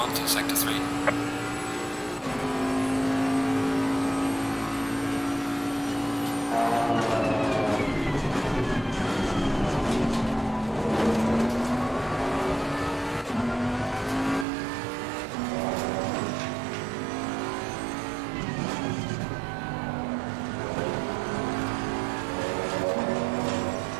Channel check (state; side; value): drops out; left; at 14.5 s